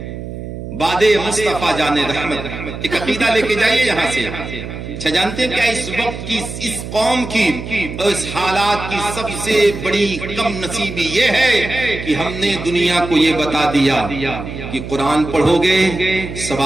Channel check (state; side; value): noise; right; hum, 9 dB below the sound